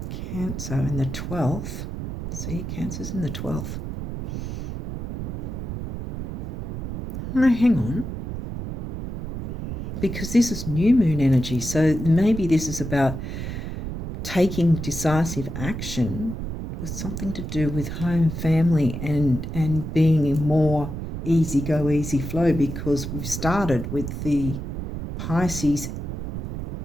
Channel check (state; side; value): noise; right; rumble, 6 dB below the sound